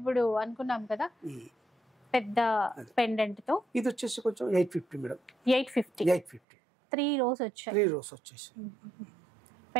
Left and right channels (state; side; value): drops out; left; at 6.4 s